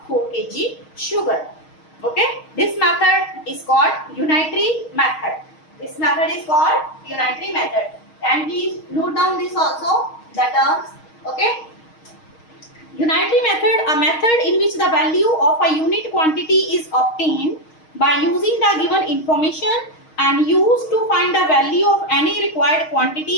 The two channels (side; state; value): right; late; 6.4 ms